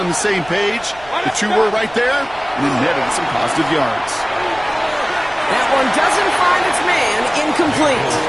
the same page. The two were right there, and it netted some positive yards. That one doesn't find its man, incomplete.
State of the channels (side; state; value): right; noise; rumble, 22 dB below the sound